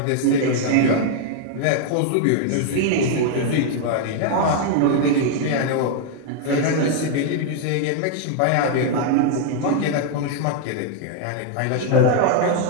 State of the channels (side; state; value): both; different; correlation 0.00